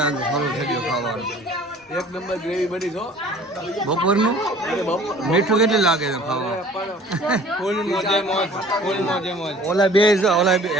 ચાલુ થઈ ગયું ખાવાનું. એક નંબર ગ્રેવી બની છો. બપોરનું મીઠું કેટલું લાગે છે ખાવા? ઓલા બે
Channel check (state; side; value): normal; both; correlation 0.49